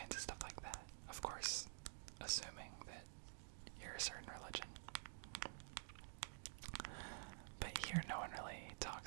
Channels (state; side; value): silent; left; digital silence